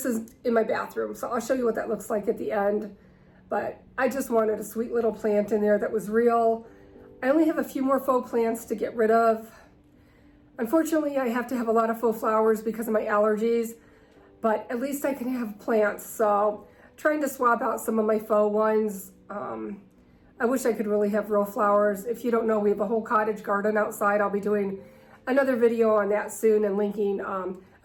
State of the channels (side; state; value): both; identical; correlation 1.00